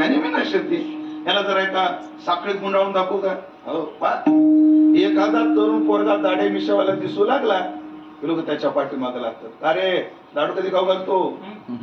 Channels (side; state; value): both; identical; correlation 1.00